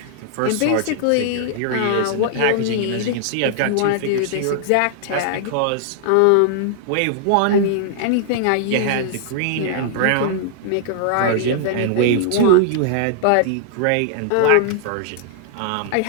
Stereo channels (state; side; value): different; both; correlation -0.01